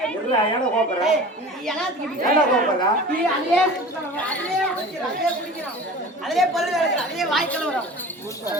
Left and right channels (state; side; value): normal; both; correlation 0.38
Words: ஏடா கோபறா ஏடா கோபறா அதிலே பல்லு கிடக்குற அதிலே வாய் கலவரம்